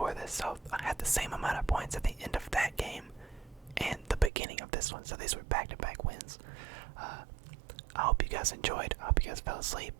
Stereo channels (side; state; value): left; drops out; at 4.3 s